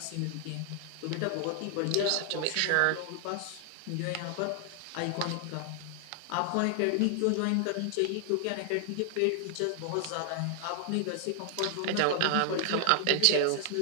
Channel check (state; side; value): different; both; correlation 0.00